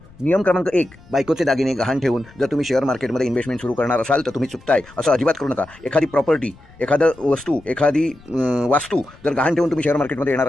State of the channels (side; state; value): left; noise; rumble, 24 dB below the sound